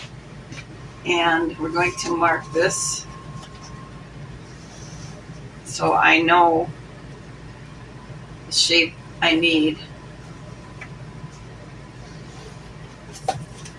And we're going to mark this so I know the shape I need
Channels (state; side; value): identical; both; correlation 1.00